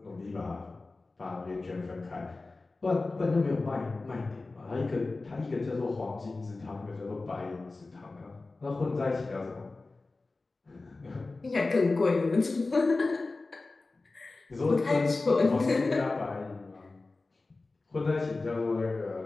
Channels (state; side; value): quieter; right; 3.5 dB